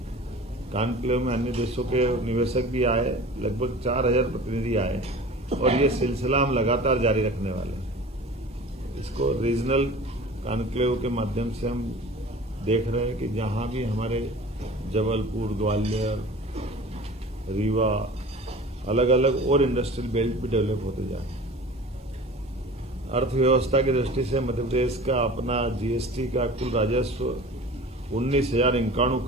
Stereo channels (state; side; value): normal; both; correlation 0.40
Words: कॉन्क्लेव में अन्य देशों के निवेशक भी आए, लगभग 4,000 प्रतिनिधि आए और ये सिलसिला हम लगातार जारी रखने वाले हैं। इसको रीजनल कॉन्क्लेव के माध्यम से हम देख रहे हैं कि जहां भी हमारे जबलपुर, ग्वालियर, रीवा, अलग अलग और इंडस्ट्रियल बेल्ट भी डेवलप होते जाए। अर्थव्यवस्था की दृष्टि से मध्य प्रदेश का अपना जीएसटी का कुल राजस्व 19,051